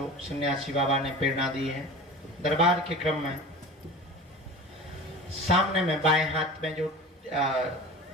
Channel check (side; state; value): both; normal; correlation 0.35